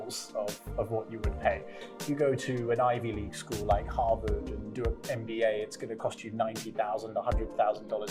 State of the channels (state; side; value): identical; both; correlation 1.00